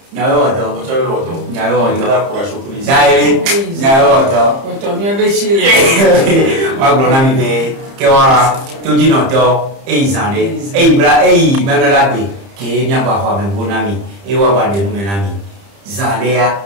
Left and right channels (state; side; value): late; left; 30 ms